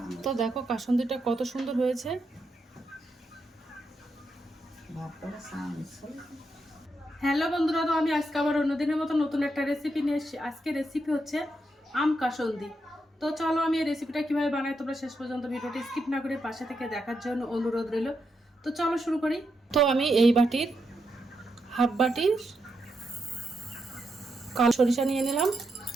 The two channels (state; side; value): normal; both; correlation 0.83